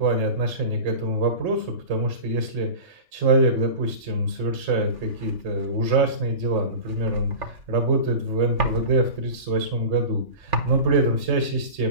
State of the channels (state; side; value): late; left; 3.6 ms